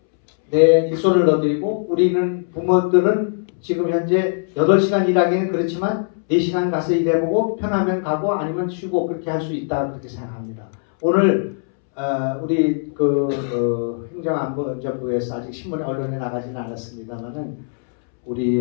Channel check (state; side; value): silent; right; 65 dB below the other